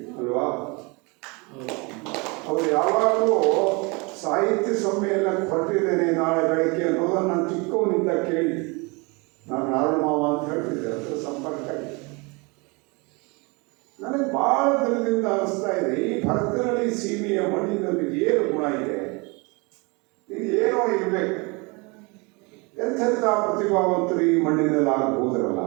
ಅಲ್ವಾ? ಅವರು ಯಾವಾಗಲೂ ಸಾಹಿತ್ಯ ಸಮ್ಮೇಳನಕ್ಕೆ ಹೊರಟಿದ್ದೇನೆ ನಾಳೆ ಬೆಳಗ್ಗೆ ಅನ್ನೋದನ್ನು ನಾನು ಚಿಕ್ಕವನಿಂದ ಕೇಳಿ, ನಾನು ನಾರಾಯಣ ಮಾವ ಅಂತ ಹೇಳ್ತಿದ್ದೆ, ಅದರ ಸಂಪರ್ಕ. ನನಗೆ ಭಾಳ ದಿನದಿಂದ ಅನಿಸ್ತಾ ಇದೆ, ಈ ಭರತನಹಳ್ಳಿ ಸೀಮೆಯ ಮಣ್ಣಿನಲ್ಲಿ ಏನು ಗುಣ ಇದೆ, ಇದು ಏನೋ ಇರಬೇಕು. ಎಂಥೆಂಥ ಪ್ರತಿಭಾವಂತರು ಈ ಮಣ್ಣಿನಲ್ಲಿ ಆಗಬಹುದರಲ್ಲ.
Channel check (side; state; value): left; quieter; 28.5 dB